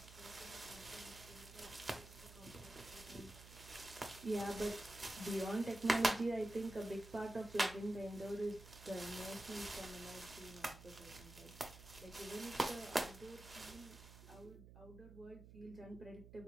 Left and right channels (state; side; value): noise; right; hum, 16 dB below the sound